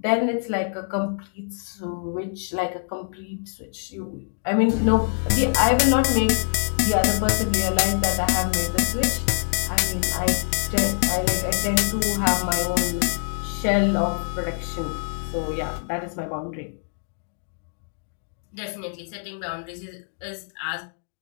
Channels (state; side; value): silent; right; 62 dB below the other